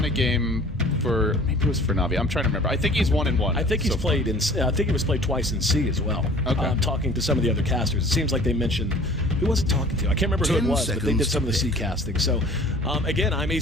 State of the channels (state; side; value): normal; both; correlation 0.48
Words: a game for, maybe it was for Navi. I'm trying to remember. I think he's 1-1. I think he's played in. I think he was played twice in C as well. Okay. Talking to some of the other casters, it seems like they mentioned who was it talking to? I can't remember who it was, but they did some of the C casting. So again, I'm